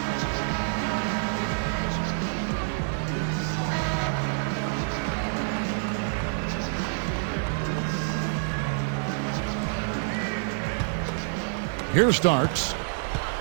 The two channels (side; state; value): left; silent; 60 dB below the other